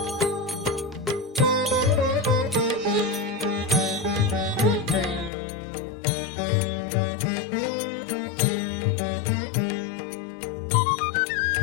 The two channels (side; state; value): right; drops out; at 5.3 s